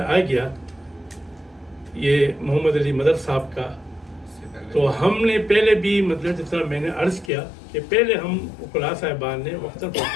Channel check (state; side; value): drops out; right; at 7.3 s